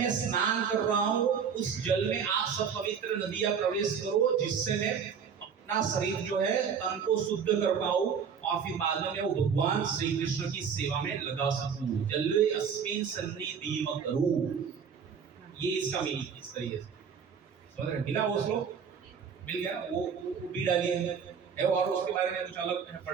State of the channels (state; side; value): quieter; left; 6.8 dB